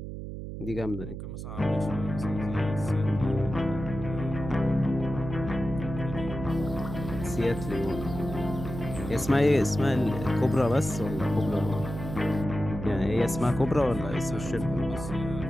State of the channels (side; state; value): right; noise; hum, 8 dB below the sound